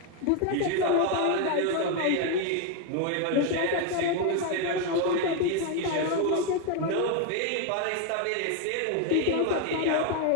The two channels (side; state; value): both; different; correlation 0.01